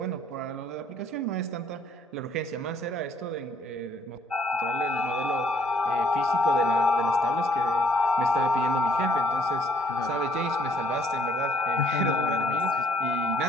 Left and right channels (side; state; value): both; normal; correlation 0.64